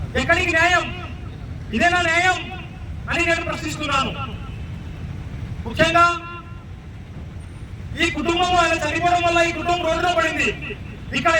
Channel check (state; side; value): identical; both; correlation 1.00